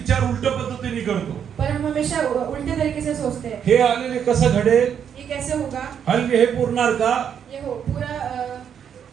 उलट पद्धतीने करतो. पर हम हमेशा उल्टे तरीके से सोचते हैं। हे आलेले कसं घडेल, ये कैसे होगा, हल्ले हे पुरणार का, ये हो पूरा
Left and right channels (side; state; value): left; quieter; 8.3 dB